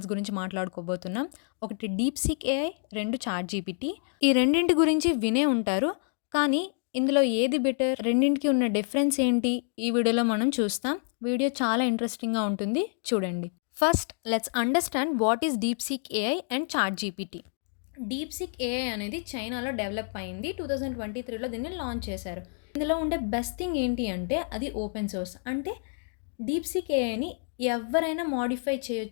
గురించి మాట్లాడుకోబోతున్నాం. ఒకటి డీప్‌సీక్ ఏఐ, 2 చాట్‌జీపీటీ. ఈ రెండింటి గురించి వినే ఉంటారు. కానీ ఇందులో ఏది బెటర్? రెండింటికి ఉన్న డిఫరెన్స్ ఏంటి? ఈ వీడియోలో మనం చూస్తాం. వీడియో చాలా ఇంట్రెస్టింగ్‌గా ఉంటుంది. చూడండి. First let's understand what is DeepSeek AI and ChatGPT. DeepSeek AI అనేది చైనాలో డెవలప్ అయింది. 2023లో దీన్ని లాంచ్ చేశారు. ఇందులో ఉండే బెస్ట్ థింగ్ ఏంటి అంటే అది ఓపెన్ సోర్స్. అంటే డీప్‌సీక్ ఏఐని ఎవరైనా మోడిఫై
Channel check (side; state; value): right; silent; 55 dB below the other